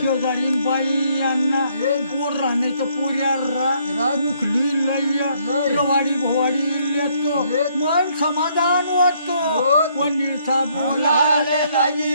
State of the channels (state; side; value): inverted; both; correlation -0.68